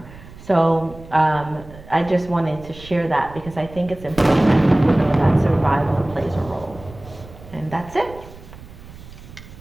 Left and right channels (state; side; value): noise; right; rumble, 18 dB below the sound